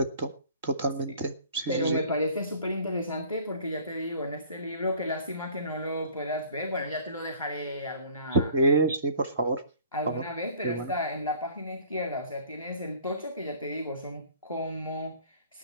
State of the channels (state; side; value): inverted; both; correlation -0.50